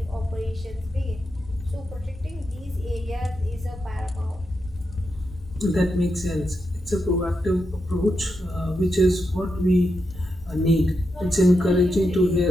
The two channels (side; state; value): both; normal; correlation 0.85